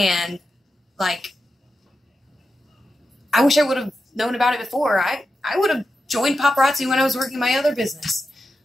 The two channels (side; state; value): both; normal; correlation 0.89